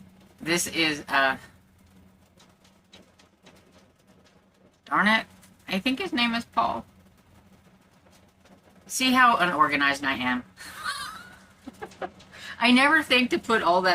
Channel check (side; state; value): both; identical; correlation 1.00